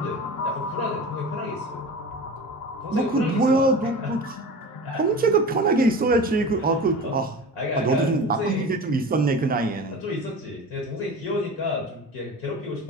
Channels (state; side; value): normal; both; correlation 0.33